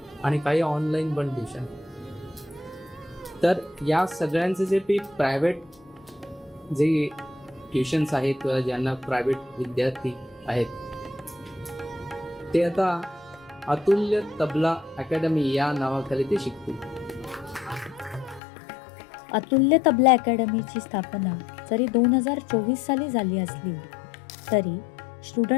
आणि काही ऑनलाईन पण ट्युशन. तर या सगळ्यांचे जे प्रायव्हेट जे ट्युशन्स आहेत किंवा ज्यांना प्रायव्हेट विद्यार्थी आहेत ते आता अतुल्य तबला अकॅडमी या नावाखाली ते शिकतील. अतुल्य तबला अकॅडमीची स्थापना जरी 2024 साली झाली असली तरी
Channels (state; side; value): drops out; right; at 18.4 s